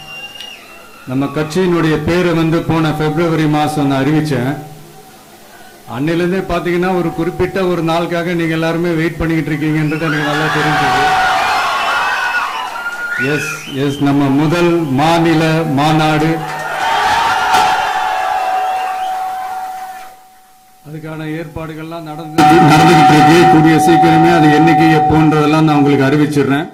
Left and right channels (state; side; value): identical; both; correlation 1.00